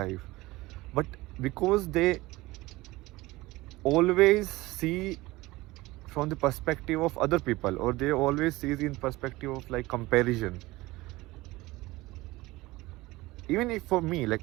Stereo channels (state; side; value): quieter; left; 19.9 dB